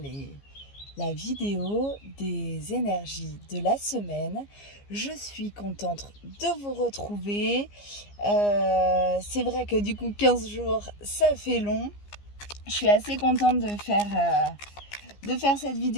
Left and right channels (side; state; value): right; late; 15 ms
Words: la vidéo des énergies de la semaine. Je suis contente de vous retrouver. C'est vrai que du coup 15 jours ça fait long. Je suis assez contente de faire cette